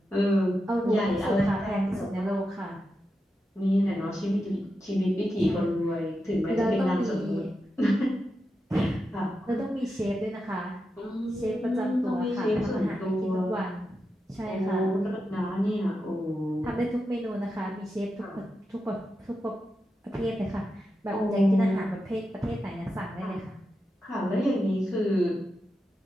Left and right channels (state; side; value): normal; both; correlation 0.88